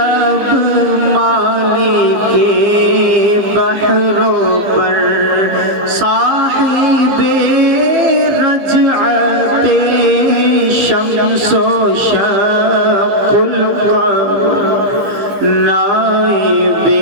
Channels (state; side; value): late; left; 15 ms